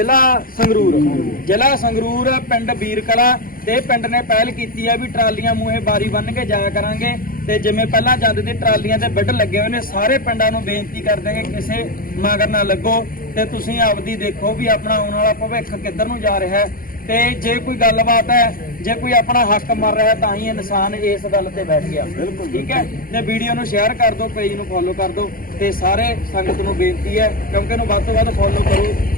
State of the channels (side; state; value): right; late; 0.42 ms